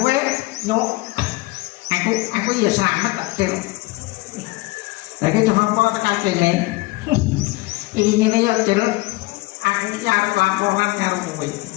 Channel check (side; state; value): right; quieter; 21.8 dB